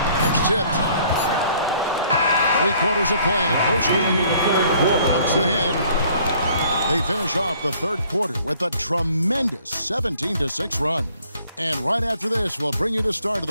That's tipped. 3 quarters of play in a close game here. Hawks ahead. They finish off the third quarter with a tremendous 17-6 run. And right after this, we'll bring you the start of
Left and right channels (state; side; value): inverted; both; correlation -0.59